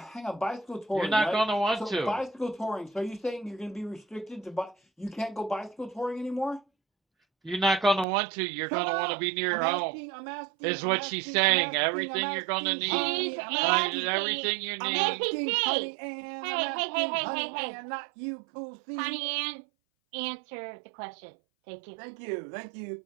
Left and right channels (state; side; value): drops out; left; at 8.1 s